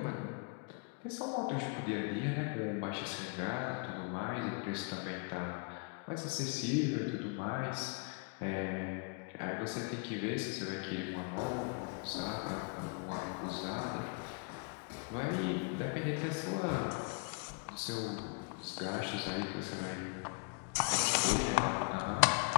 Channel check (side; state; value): right; quieter; 36.0 dB